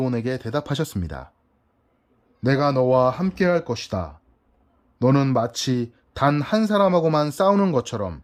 대답하셨습니다. 내가 너와 함께할 것이다. 너는 마치 단 한 사람하고만 싸우는 것처럼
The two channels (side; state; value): both; identical; correlation 1.00